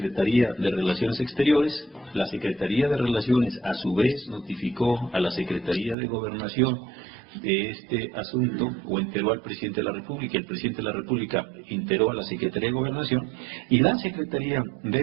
de Relaciones Exteriores, la Secretaría de Relaciones a su vez notificó a la Secretaría de Gobernación de este asunto, o enteró al Presidente de la República, el Presidente de la República enteró a la Secretaría de Gobernación, y la Secretaría de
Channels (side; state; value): left; drops out; at 6.0 s